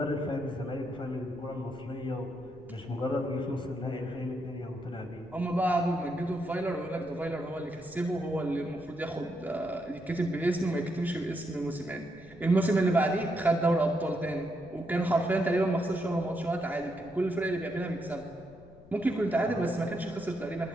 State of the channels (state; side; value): noise; left; rumble, 23 dB below the sound